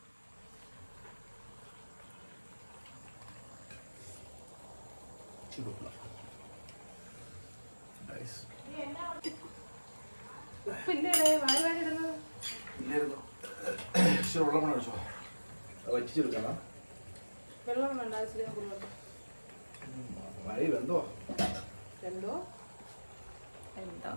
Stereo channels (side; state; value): both; inverted; correlation -1.00